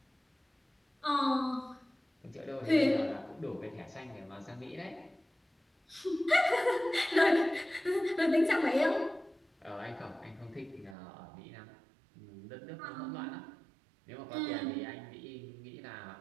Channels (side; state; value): left; drops out; at 11.0 s